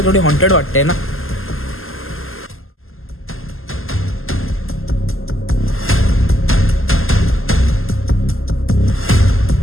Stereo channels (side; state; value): right; late; 0.61 ms